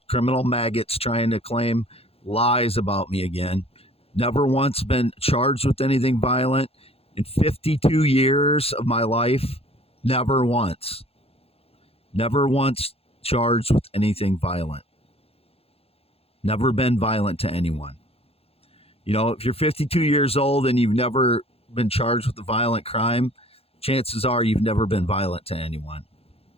maggots trying to claim lies about me again. Never once been charged with anything violent in 52 years of my life. Never once. Never once charged with anything violent. Never been violent to anyone. You know, if you're 52 years old and you've never been charged with a violent crime, chances are you've never been violent to anyone.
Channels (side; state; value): right; late; 0.29 ms